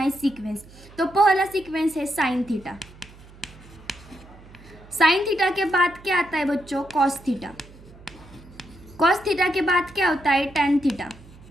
सीक्वेंस। तो पहला सीक्वेंस है साइन थीटा। साइन थीटा के बाद क्या आता है बच्चों? Cos theta. कॉस थीटा के बाद क्या होता है? Tan theta.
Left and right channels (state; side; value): noise; right; hum, 21 dB below the sound